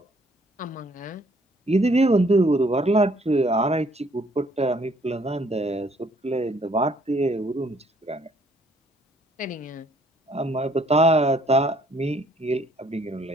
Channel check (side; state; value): both; normal; correlation 0.63